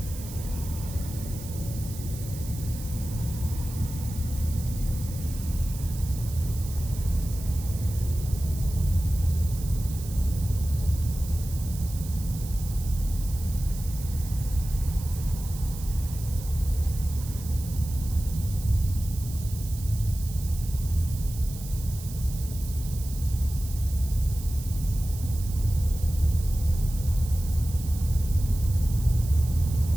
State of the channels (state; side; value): noise; right; hiss, 14 dB below the sound